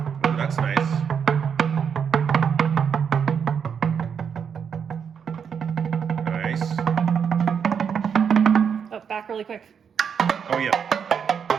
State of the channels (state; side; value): quieter; left; 7.1 dB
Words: that's nice. Oh, back really quick. Oh, yeah.